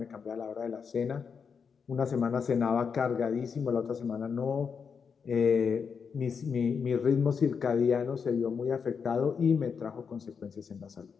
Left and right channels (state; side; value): quieter; right; 6.1 dB